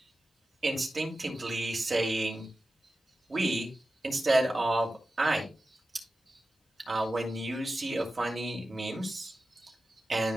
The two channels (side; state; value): both; normal; correlation 0.94